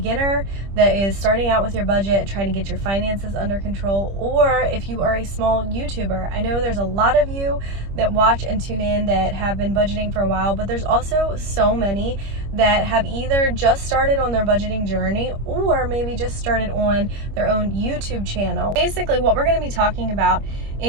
that is starting out with your budget, trying to get your finances under control, or if you are a small YouTuber. I know there's a lot of you that watch and tune in that have been budgeting for a while, but there's also so many that have either just started on their budgeting journey or maybe just started on their own YouTube channel. Basically, what we're going to be talking about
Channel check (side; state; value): left; late; 25 ms